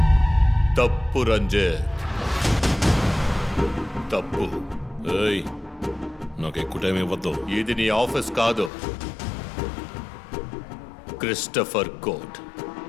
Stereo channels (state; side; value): drops out; right; at 8.7 s